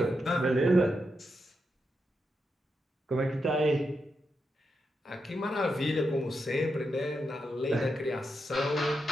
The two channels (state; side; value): normal; both; correlation 0.85